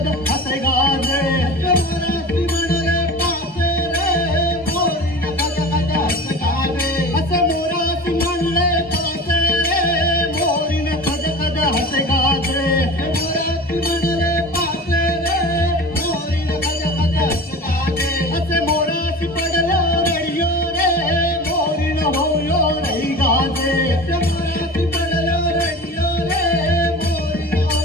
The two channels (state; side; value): normal; both; correlation 0.35